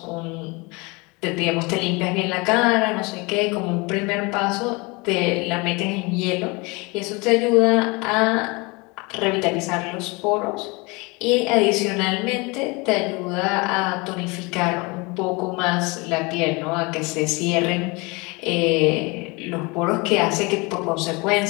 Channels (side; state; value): right; quieter; 26.9 dB